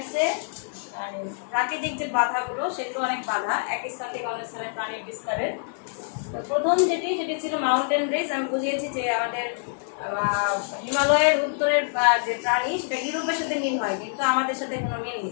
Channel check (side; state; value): right; silent; digital silence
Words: প্রাকৃতিক যে বাধাগুলো সেগুলো অনেক বাধা এক স্থান থেকে অন্য স্থানে প্রাণীর বিস্তারের। তো প্রথম সেটি ছিল মাউন্টেন রেঞ্জ। আমি বুঝিয়েছি যে আমাদের হিমালয়ের উত্তরের যে প্রাণী সেটা ইউরোপের সাথে মিল হয়, কিন্তু আমাদের সাথে কোনো মিল